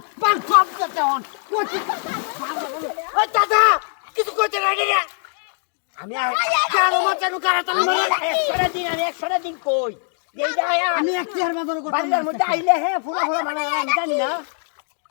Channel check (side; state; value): right; silent; 56 dB below the other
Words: পান সব করতে হন ওই দাদা কিছু করতে রাখে রে আমি কেন মাচানো কারাতালি মারে 100 দিন কই এই যায় আমি এক চেয়ার বাজার করতে বাড়ির মধ্যে আইলে হ্যাঁ ফুলা মানে আমি জানি না